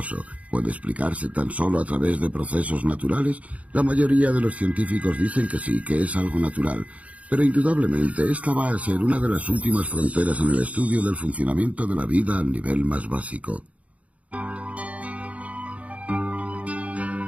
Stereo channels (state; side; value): late; left; 0.066 ms